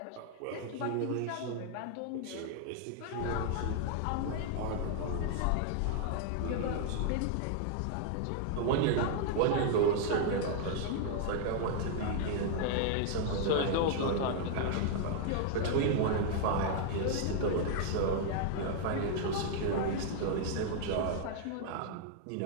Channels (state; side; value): different; both; correlation 0.00